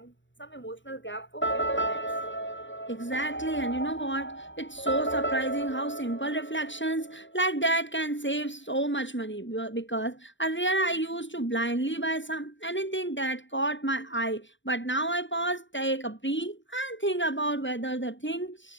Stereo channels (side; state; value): right; late; 0.54 ms